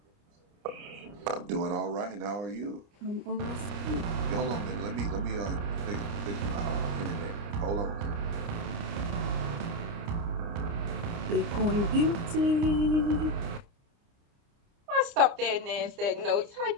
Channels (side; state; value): left; late; 29 ms